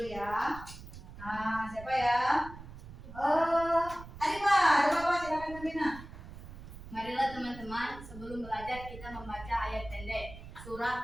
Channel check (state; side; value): noise; right; rumble, 14 dB below the sound